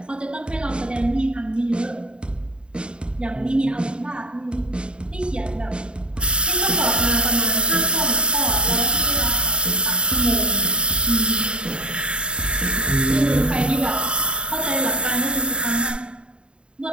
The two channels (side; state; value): left; late; 0.053 ms